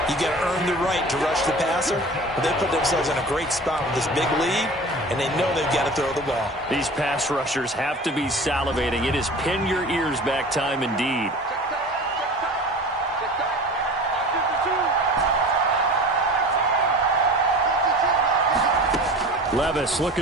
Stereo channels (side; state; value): both; normal; correlation 0.38